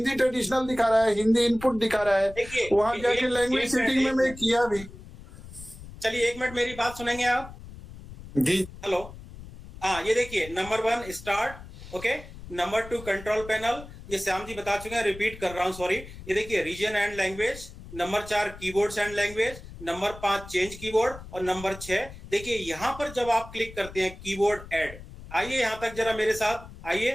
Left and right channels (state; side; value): noise; left; rumble, 15 dB below the sound